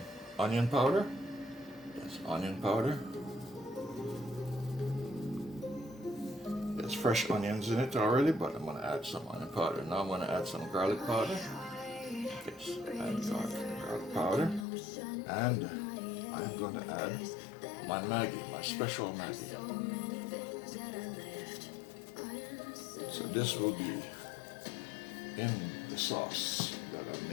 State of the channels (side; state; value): right; drops out; at 14.7 s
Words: onion powder. Yes, onion powder. There's fresh onions in it already, but I'm going to add some onion powder. Now I'm going to add some garlic powder. Yes, and garlic powder. And I'm going to add my Maggi, my special Maggi. So this will be in the sauce that I'm